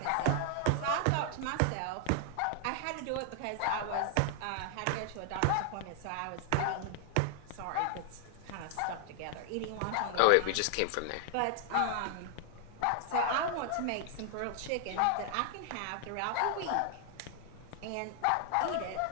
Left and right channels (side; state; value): both; different; correlation 0.00